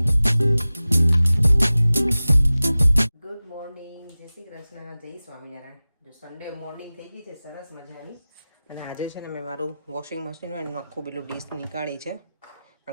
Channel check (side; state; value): both; inverted; correlation -0.97